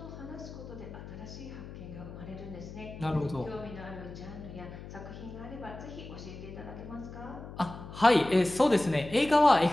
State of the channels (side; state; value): left; noise; hum, 13 dB below the sound